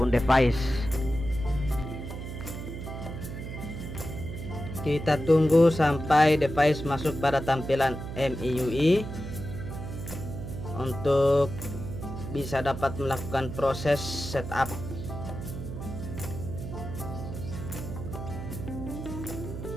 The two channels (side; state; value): right; noise; hum, 8 dB below the sound